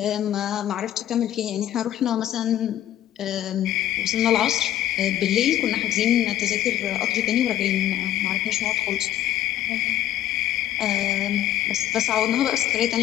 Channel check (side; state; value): right; quieter; 12.3 dB